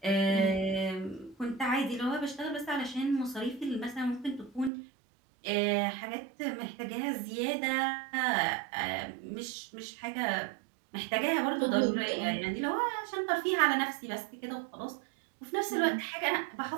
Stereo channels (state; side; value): drops out; left; at 4.7 s